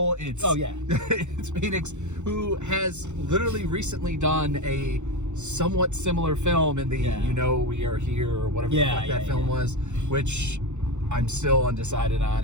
It's it's Phoenix, who has literally recently done a somewhat similar film in the You Know We Are Here or whatever the fuck that film was, which I'm still undecided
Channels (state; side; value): late; left; 0.83 ms